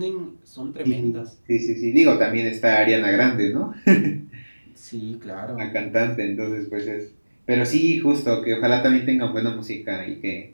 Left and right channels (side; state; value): both; inverted; correlation -1.00